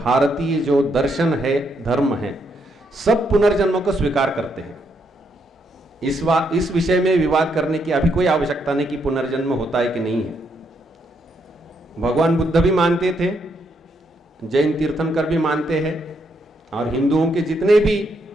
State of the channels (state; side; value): normal; both; correlation 0.76